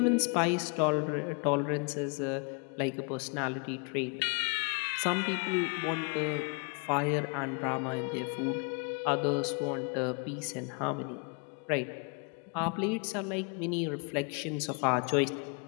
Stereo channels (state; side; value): quieter; right; 35.4 dB